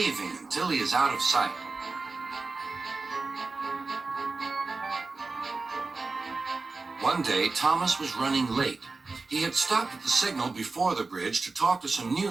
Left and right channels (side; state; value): left; quieter; 3.8 dB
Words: until he is out of sight. One day, Thomas was running late. He had stopped at the signal before the bridge to talk to some